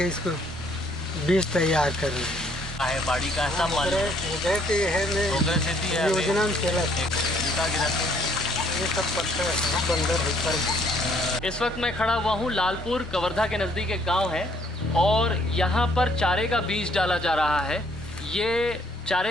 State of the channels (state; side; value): normal; both; correlation 0.64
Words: इसको बीज तैयार कर रहे हैं। है बाड़ी का ऐसा माल योजना में चला ये सब पत्थर बंदर ऊपर। इस वक्त मैं खड़ा हुआ हूँ लालपुर कवर्धा के नज़दीक एक गांव है और यहाँ पर चारे का बीज डाला जा रहा है। ये